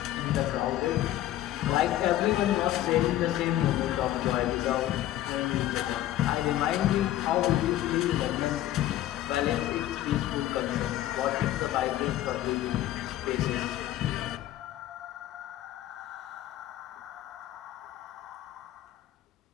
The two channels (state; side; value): quieter; right; 13.6 dB